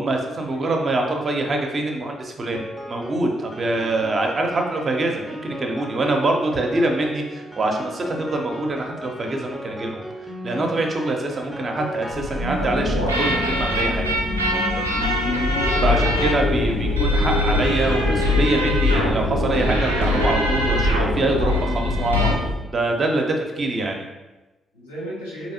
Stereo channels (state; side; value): normal; both; correlation 0.67